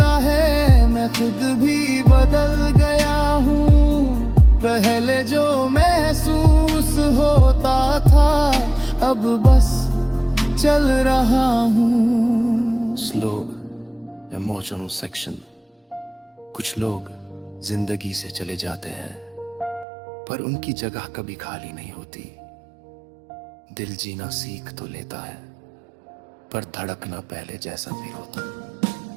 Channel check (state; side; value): drops out; left; at 19.9 s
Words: है मैं खुद भी बदल गया हूँ। पहले जो महसूस होता था अब बस चल रहा हूँ। Slow emotional section. कुछ लोग जिंदगी से चले जाते हैं पर उनकी जगह कभी खाली नहीं होती। दिल जीना सीख तो लेता है पर धड़कना पहले जैसा फिर होता।